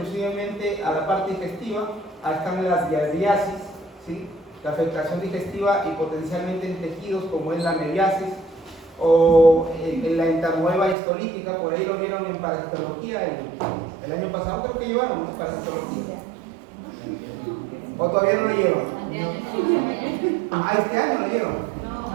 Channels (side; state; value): left; drops out; at 11.0 s